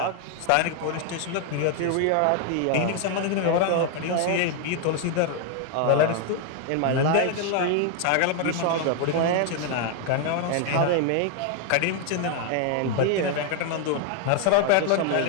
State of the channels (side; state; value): both; different; correlation 0.00